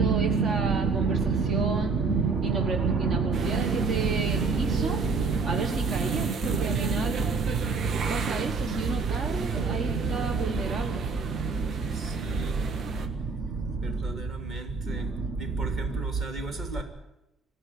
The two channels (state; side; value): quieter; left; 4.4 dB